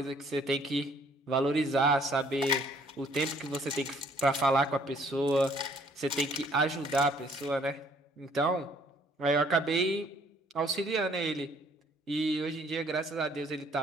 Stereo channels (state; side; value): normal; both; correlation 0.61